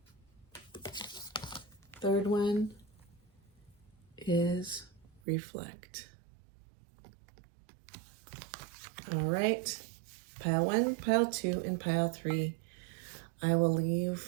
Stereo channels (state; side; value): drops out; left; at 5.2 s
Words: Third one is reflect. All right, pile 1, pile 2, and pile 3. I will